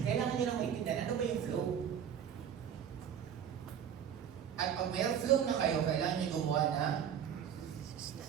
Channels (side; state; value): left; quieter; 8.7 dB